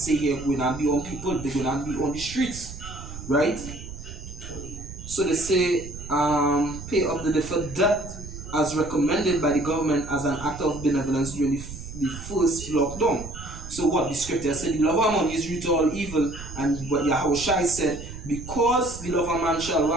here, going to be on people, they're going to be on the streets, right? So they say, pay up the deferred debt as recommended by the government as an act of benevolence during the first lockdown. So what the scripture said, the love of money is root to all evil, and what Yahushua said, because the love of man shall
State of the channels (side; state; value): right; noise; rumble, 12 dB below the sound